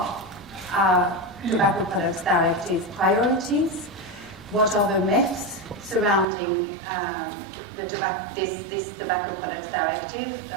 our Tobacco Products Directive priorities, what are the myths surrounding this Tobacco Products Directive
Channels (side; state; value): left; drops out; at 6.2 s